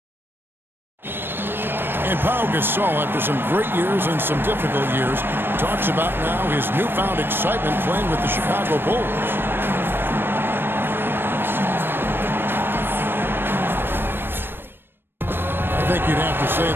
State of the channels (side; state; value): left; late; 0.099 ms